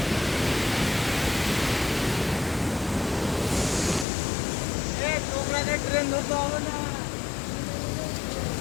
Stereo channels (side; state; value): right; drops out; at 4.0 s